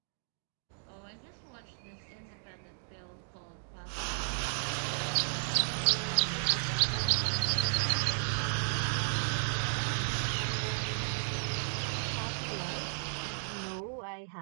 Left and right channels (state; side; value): silent; left; digital silence